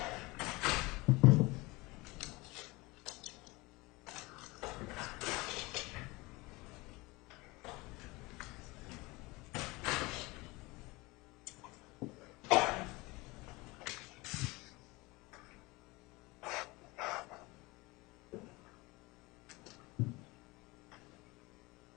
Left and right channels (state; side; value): quieter; right; 23.3 dB